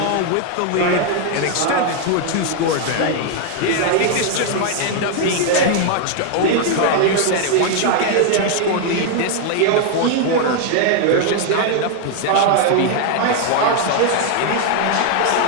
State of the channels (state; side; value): different; both; correlation 0.00